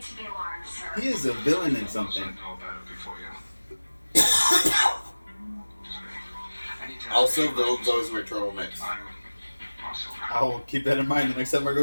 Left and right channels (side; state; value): both; inverted; correlation -1.00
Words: to be alarmed, sir. He is a villain in something. Also, villains always wear turtlenecks. I'll keep that in mind the next time I